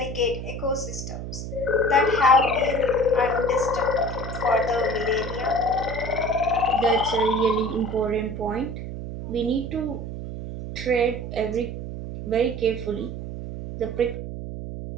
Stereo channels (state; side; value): noise; right; hum, 7 dB below the sound